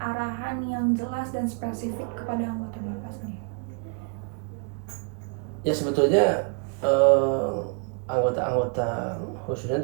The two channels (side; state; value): left; quieter; 37.5 dB